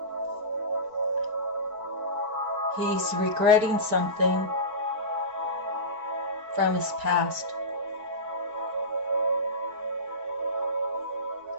He's regretting something from his past.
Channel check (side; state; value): left; late; 4.5 ms